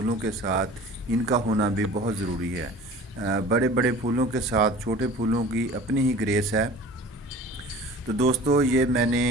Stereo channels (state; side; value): normal; both; correlation 0.43